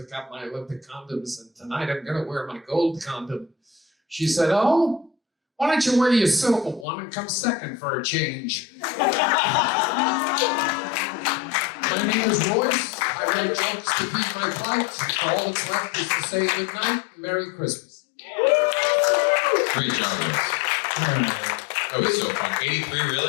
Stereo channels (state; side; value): drops out; right; at 6.9 s